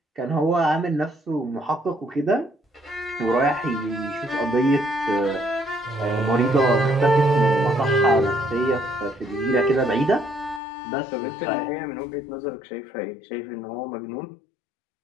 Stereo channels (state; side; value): drops out; right; at 10.6 s